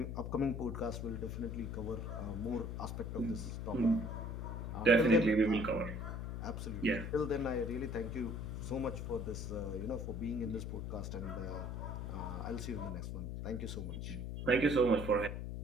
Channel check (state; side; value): noise; left; hum, 4 dB below the sound